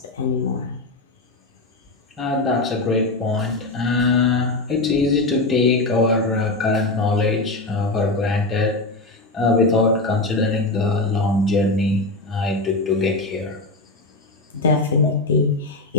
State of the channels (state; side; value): quieter; right; 3.0 dB